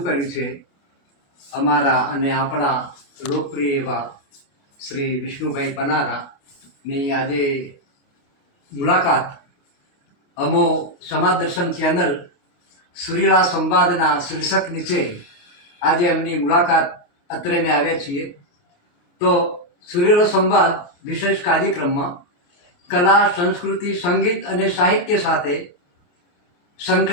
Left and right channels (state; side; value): late; right; 28 ms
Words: કર્યું છે. અમારા અને આપણા લોકપ્રિય એવા શ્રી વિષ્ણુભાઈ પનારાની આજે મુલાકાત અમો સમાજ દર્શન ચેનલ સુરીલા સંવાદના શીર્ષક નીચે આજે એમની મુલાકાત અત્રેને આવ્યા છીએ. તો સુરીલો સંવાદ વિશેષ કાર્યક્રમમાં કલા, સંસ્કૃતિ, સંગીત અને સાહિત્ય સાથે